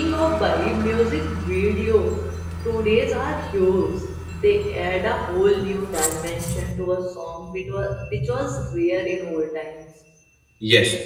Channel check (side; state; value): both; identical; correlation 1.00